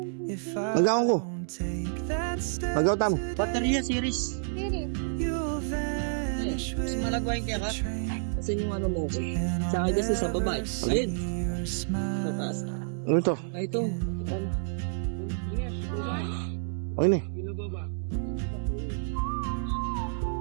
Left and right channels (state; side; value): silent; left; digital silence